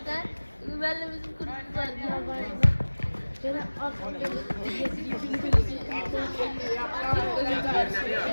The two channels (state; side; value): inverted; both; correlation -1.00